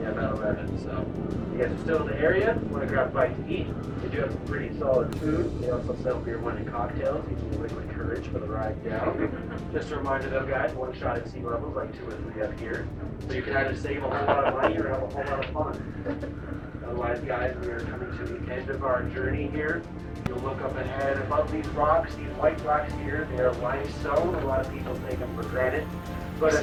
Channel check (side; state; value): both; identical; correlation 1.00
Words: about 11. So you guys are still in the area. Want to grab a bite to eat? They do have some pretty solid food. They also sell beer, wine, and cocktails. Using liquid courage for the ride down. Just a reminder though, guys, one shot at sea levels like 2 or 3 up here. So you can either save a whole lot of money or have a whole lot of fun. Otherwise, guys, we are coming to the end of our journey here. You'll look up ahead above these rocks, these white rocks here. They are limestone. A lot of people take them for granted. But